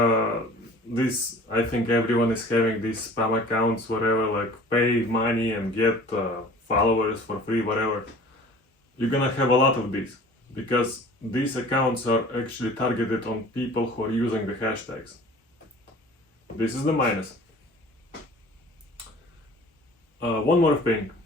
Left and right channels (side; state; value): both; normal; correlation 0.46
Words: this, I think everyone is having these spam accounts, whatever, like pay money and get followers for free, whatever. You're gonna have a lot of these, because these accounts are actually targeted on people who are using the hashtags. This is the minus. One more thing.